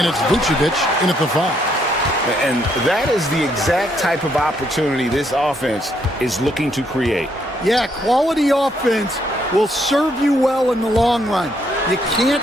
it's Vucevic in at the 5. And that is the exact type of opportunity this offense is looking to create. Yeah, quality offense will serve you well in the long run. You can't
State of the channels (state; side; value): normal; both; correlation 0.73